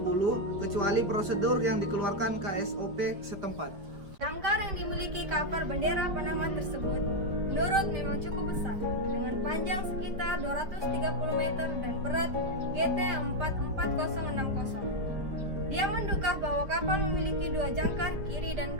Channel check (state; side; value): late; left; 5.3 ms